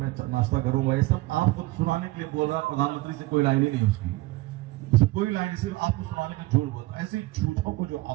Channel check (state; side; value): quieter; left; 19.5 dB